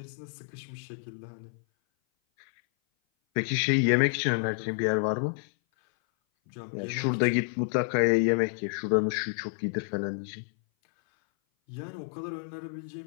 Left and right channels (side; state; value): right; silent; 57 dB below the other